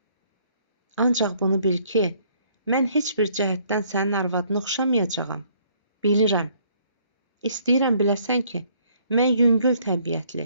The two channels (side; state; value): both; inverted; correlation -0.64